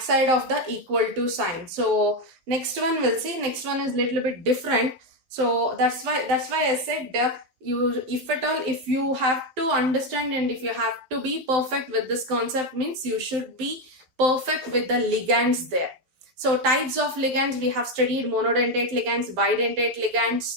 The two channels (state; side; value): late; left; 12 ms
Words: of the equal to sign. So next one we'll see. Next one is little bit different. So that's why I said if at all, if you have to understand and if you have to be perfect with this concept, means you should be perfect with the ligands there. So types of ligands we have studied: monodentate ligands, bidentate